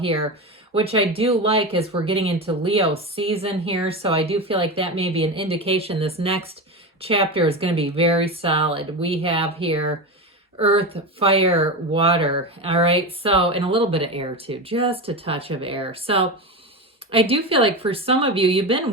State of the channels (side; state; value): both; normal; correlation 0.21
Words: which I do like as we're getting into Leo season here. So I do feel like that may be an indication this next chapter is going to be very solid. We have here earth, fire, water. All right. So, and a little bit of air too, just a touch of air. So I do feel like for some of you, you've